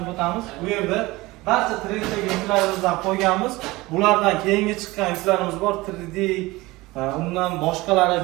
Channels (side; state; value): left; quieter; 20.7 dB